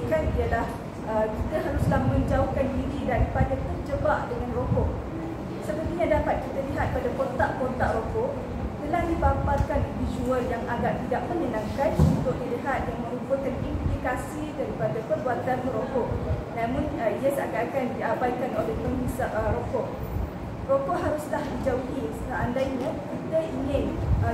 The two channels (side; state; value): both; identical; correlation 1.00